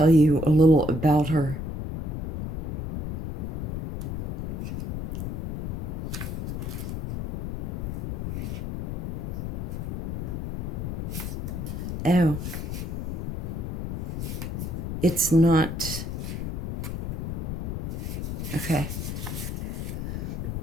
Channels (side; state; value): left; noise; rumble, 3 dB below the sound